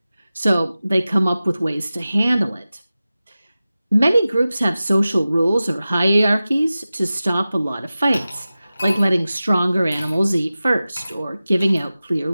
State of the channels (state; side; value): inverted; both; correlation -0.95